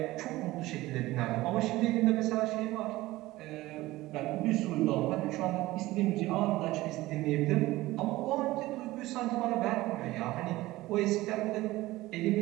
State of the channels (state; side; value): quieter; left; 18.1 dB